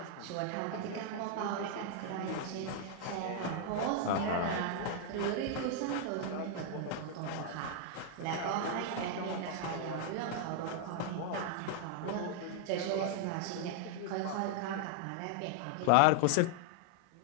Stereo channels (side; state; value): both; different; correlation 0.00